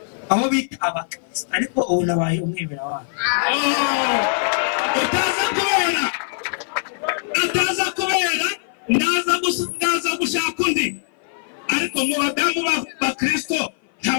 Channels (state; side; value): silent; right; 56 dB below the other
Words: aho bita abakristo ariko ubu nabaye umwemeramana. Utaza kubera ndaza gushaka undi. Ariko mu badamu b'abakristo